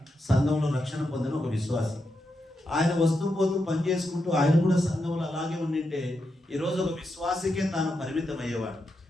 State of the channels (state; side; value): normal; both; correlation 0.85